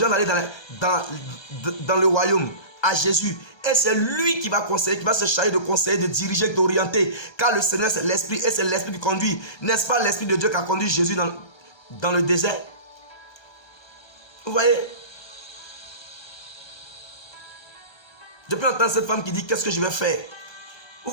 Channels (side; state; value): right; late; 1.3 ms